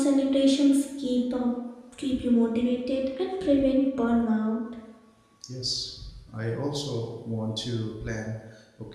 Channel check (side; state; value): both; identical; correlation 1.00